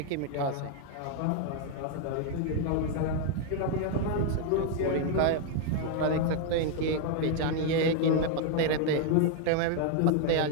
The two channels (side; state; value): both; different; correlation 0.00